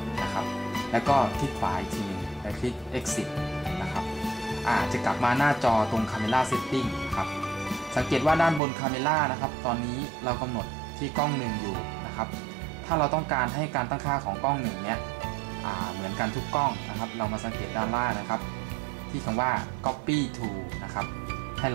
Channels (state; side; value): drops out; left; at 8.6 s